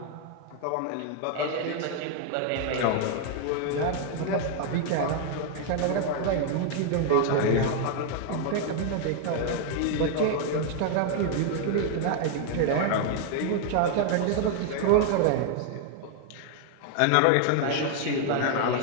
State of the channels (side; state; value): both; different; correlation 0.00